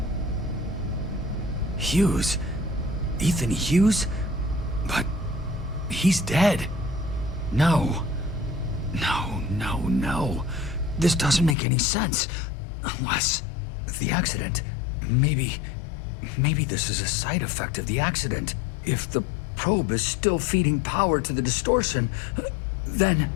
Hughes? Ethan Hughes? But he's dead. No. This doesn't make any sense. Unless the accident. Maybe this is a side effect of the accident. If the probe is still feeding power to the distortion, then...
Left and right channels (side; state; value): right; drops out; at 11.6 s